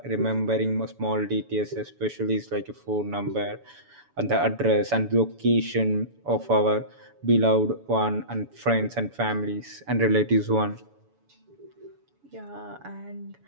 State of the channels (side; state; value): left; late; 7.1 ms